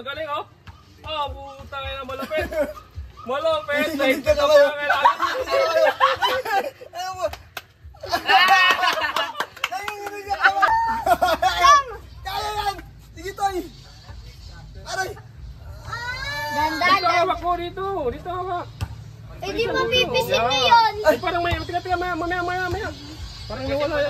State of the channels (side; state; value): both; identical; correlation 1.00